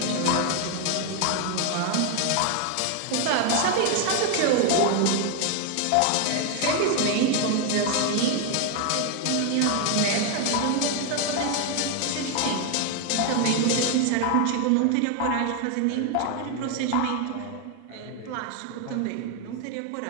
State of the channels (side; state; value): both; different; correlation 0.01